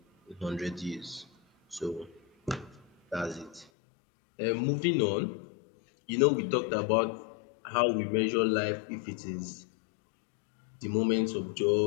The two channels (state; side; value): drops out; right; at 3.7 s